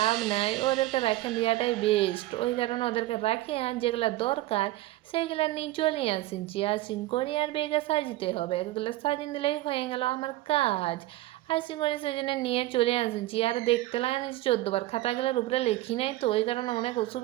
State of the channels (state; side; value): quieter; left; 16.9 dB